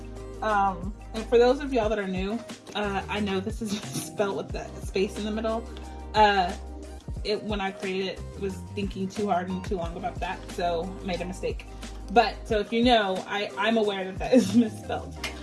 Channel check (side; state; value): both; identical; correlation 1.00